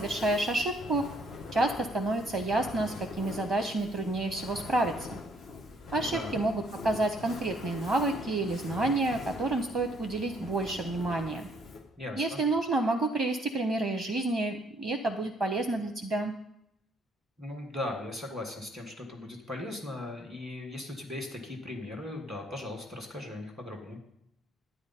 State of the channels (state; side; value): normal; both; correlation 0.66